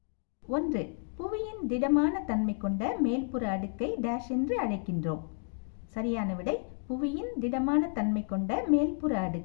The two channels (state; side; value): silent; right; 57 dB below the other